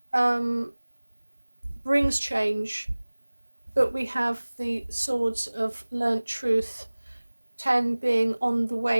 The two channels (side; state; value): both; inverted; correlation -1.00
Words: brings change, but we have the swords of learnt truth, 10 being on the